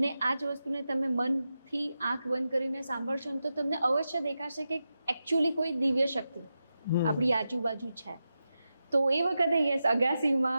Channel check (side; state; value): both; inverted; correlation -0.90